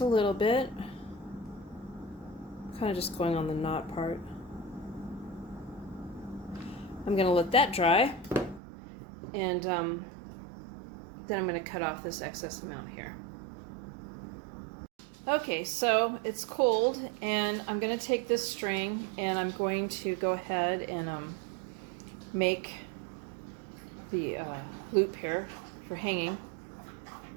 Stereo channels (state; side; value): drops out; left; at 8.6 s